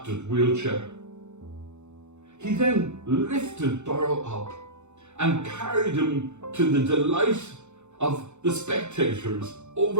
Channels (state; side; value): late; left; 0.83 ms